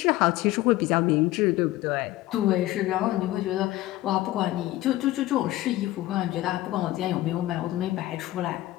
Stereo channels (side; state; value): right; quieter; 16.4 dB